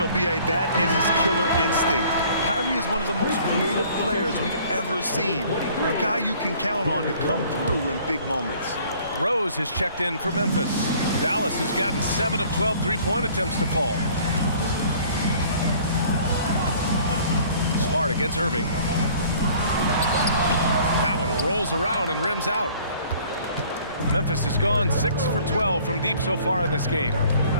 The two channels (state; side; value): inverted; both; correlation -0.54